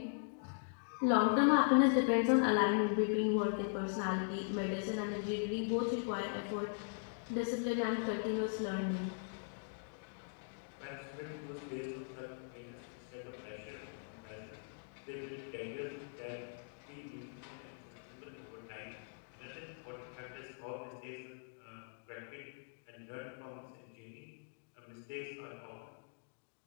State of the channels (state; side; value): silent; right; digital silence